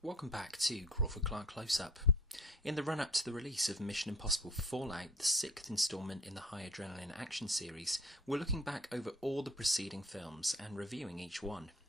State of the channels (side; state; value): both; normal; correlation 0.49